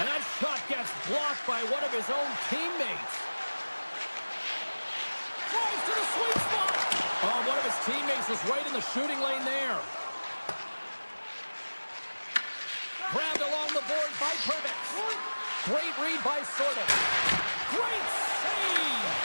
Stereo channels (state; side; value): inverted; both; correlation -1.00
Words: that shot gets blocked by one of his own teammates. Drives to the sweet spot. Oh, one of his teammates is right in the shooting lane there. Grabbed along the board by Perbix. Great read by Sortev. Great save!